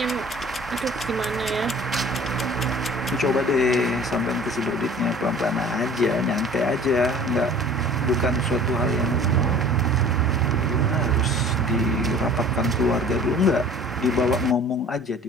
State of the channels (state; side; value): normal; both; correlation 0.47